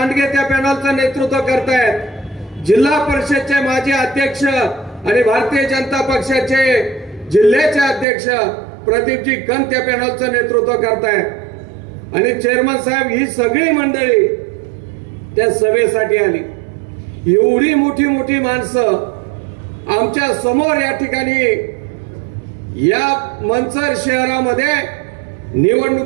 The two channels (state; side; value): drops out; left; at 8.1 s